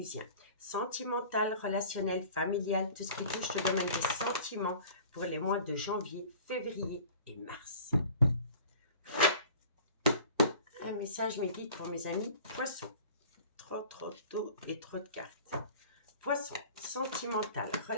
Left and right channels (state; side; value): inverted; both; correlation -0.45